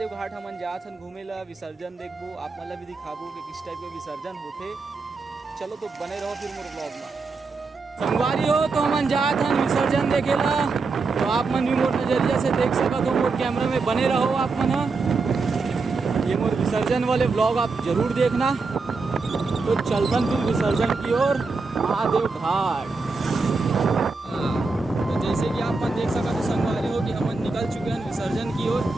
घाट। हमन जात हन घूमे ला, विसर्जन देखबो, आप मतलब भी दिखाबो कि किस टाइप के विसर्जन होते। चलो तो बने रहो फिर मोर ब्लॉग में। संगवारी हो तो हमन जात हन विसर्जन देखे ला, तो आप मन भी मोर नजरिया से देख सकत हो। मोर कैमरा में बने रहो आप मन। ये मोर विसर्जन वाले ब्लॉग आप जरूर देखना। तो चलतन फिर विसर्जन की ओर महादेव घाट। तो जैसे कि आप मन देख सकते हो संगवारी हो कि हमन निकल चुके हैं विसर्जन की ओर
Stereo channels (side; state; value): left; quieter; 4.1 dB